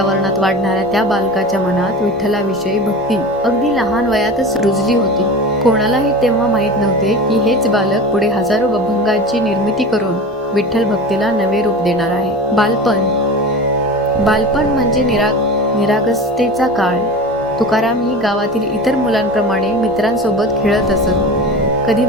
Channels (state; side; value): normal; both; correlation 0.32